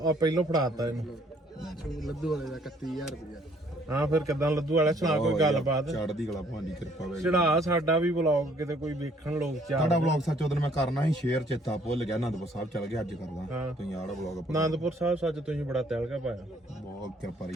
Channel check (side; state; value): both; normal; correlation 0.63